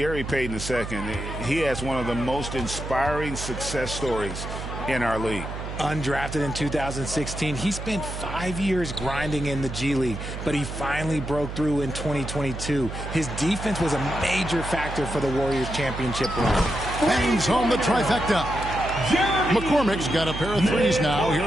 Payton II, he has one of the most inspiring success stories in our league. Undrafted in 2016, he spent 5 years grinding in the G League, but he finally broke through in 2022. His defense was a major factor for the Warriors' championship run. Bangs home the trifecta. McCormick's got a pair of threes now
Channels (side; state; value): right; noise; hum, 7 dB below the sound